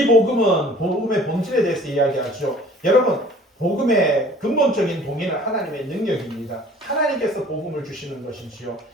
복음은 복음의 본질에 대해서 이야기하죠. 여러분 복음의 근본적인 동의는 하나님의 능력입니다. 하나님께서 복음을 주시는 것이지요.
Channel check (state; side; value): normal; both; correlation 0.50